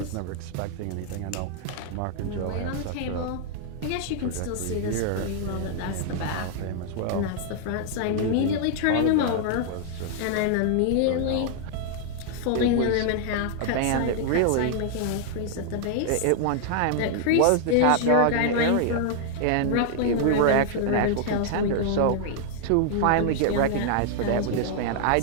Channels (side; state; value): both; different; correlation 0.00